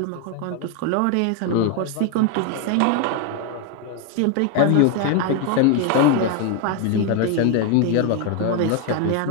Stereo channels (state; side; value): different; both; correlation 0.01